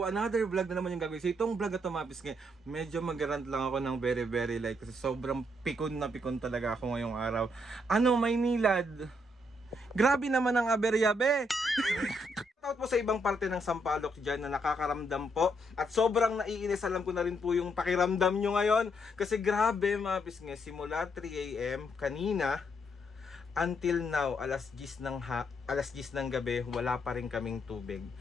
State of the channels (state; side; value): normal; both; correlation 0.75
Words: another vlog na naman yung gagawin. So itong vlog na ito mga kapisngin, medyo mag-rant lang ako ng very light kasi sobrang pikon na pikon talaga ako ngayong araw. Ano, Maynilad? Grabe naman ang aberya, be! Shoutout po sa ibang parte ng Sampaloc dyan na nakakaramdam po. At sobrang naiinis, alam ko na rin po yung pakiramdam nyo ngayon. Kasi grabe mga kapisngin, simula 3 AM kanina, until now, alas 10 ng gabi, wala pa rin kaming tubig.